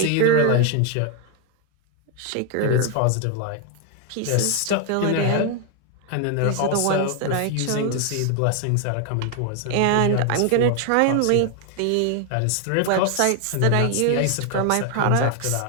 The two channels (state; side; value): different; both; correlation 0.01